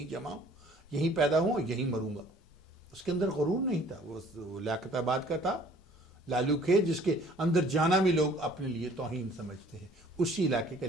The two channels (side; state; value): both; normal; correlation 0.54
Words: جمع ہوں، یہیں پیدا ہوں اور یہیں مروں گا۔ اس کے اندر غرور نہیں تھا، وہ لیاقت آباد کا تھا، لالو کھیت جس کے اندر جانا بھی لوگ اپنے لیے توہین سمجھتے ہیں، اسی علاقے کا،